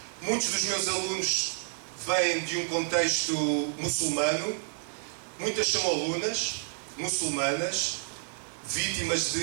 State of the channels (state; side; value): silent; left; digital silence